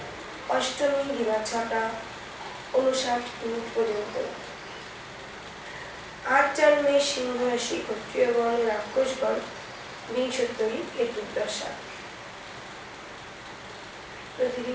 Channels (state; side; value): identical; both; correlation 1.00